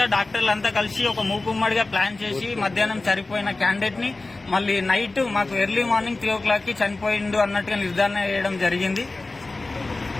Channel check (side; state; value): right; quieter; 3.2 dB